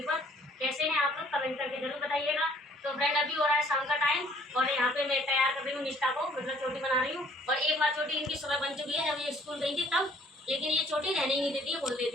पर। कैसे हैं आप लोग? कमेंट करके जरूर बताइएगा। तो फ्रेंड, अभी हो रहा है शाम का टाइम और यहाँ पे मैं तैयार कर रही हूँ निष्ठा को, मतलब चोटी बना रही हूँ। और एक बार चोटी इनकी सुबह बन चुकी है, जब ये स्कूल गई थी तब, लेकिन ये चोटी रहने ही नहीं देती है, बोल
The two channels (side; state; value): both; normal; correlation 0.59